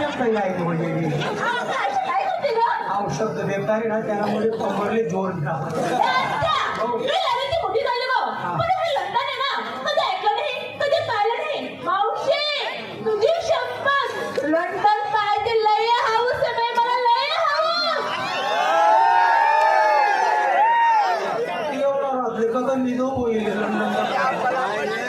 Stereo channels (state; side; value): identical; both; correlation 1.00